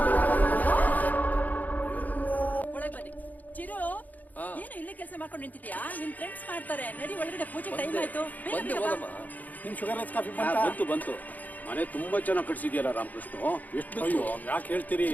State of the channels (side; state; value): right; late; 0.080 ms